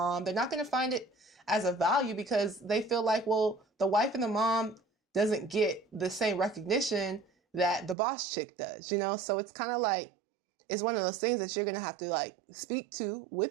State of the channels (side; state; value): left; drops out; at 8.0 s